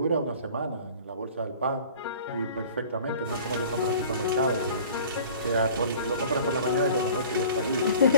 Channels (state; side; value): inverted; both; correlation -0.45